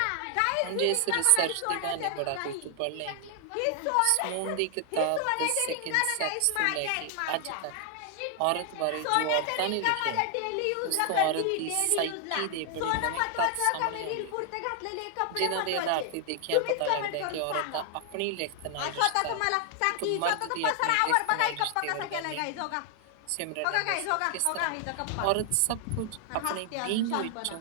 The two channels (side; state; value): both; different; correlation 0.00